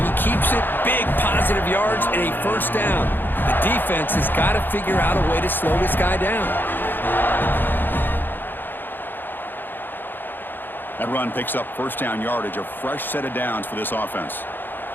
keeps it. Big positive yards and a first down. The defense has got to figure out a way to slow this guy down. That run picks up first down yardage, a fresh set of downs for this offense.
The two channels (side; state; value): right; late; 0.094 ms